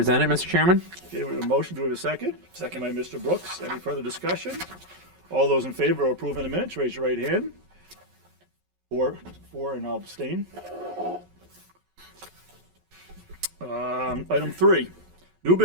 Mr. Chairman. Okay, we have a motion. Do we have a second? Second by Mr. Brooks. Any further discussion? All those in favor of approving the minutes, raise your right hand. Four, and I'll abstain. Item 3, new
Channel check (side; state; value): left; late; 11 ms